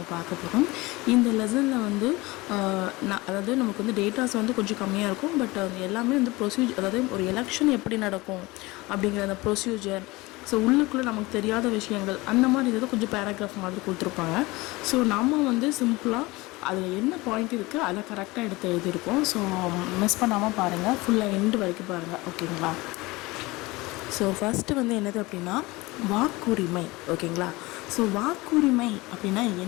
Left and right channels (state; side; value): quieter; right; 22.0 dB